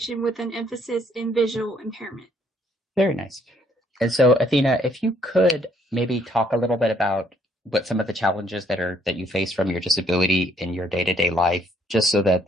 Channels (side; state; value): both; normal; correlation 0.67